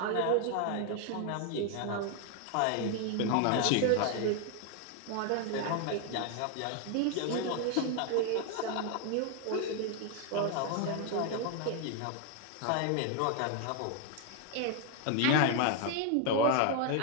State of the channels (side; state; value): both; different; correlation 0.00